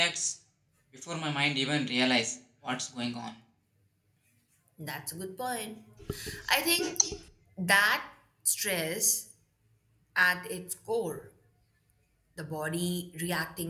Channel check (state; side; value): identical; both; correlation 1.00